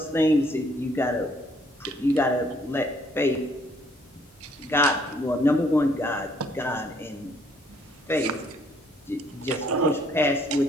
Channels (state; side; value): normal; both; correlation 0.65